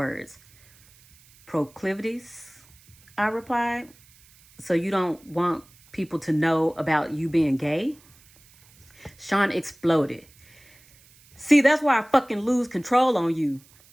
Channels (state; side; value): noise; right; hiss, 28 dB below the sound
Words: "Proclivities?" I replied. "So you don't want people to know about you being gay?" Sean exploded. "See, that's why I fucking lose control on you."